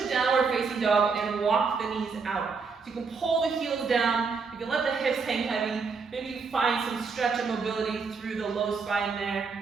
downward facing dog and walk the knees out. So you can pull the heels down, you can let the hips hang heavy, maybe you find some stretch and mobility through the low spine there.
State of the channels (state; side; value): quieter; left; 5.0 dB